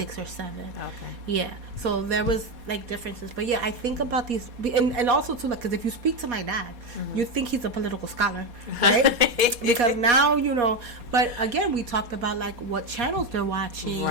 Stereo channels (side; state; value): left; late; 4.2 ms